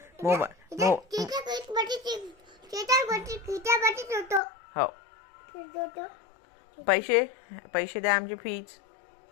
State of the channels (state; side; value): drops out; right; at 4.4 s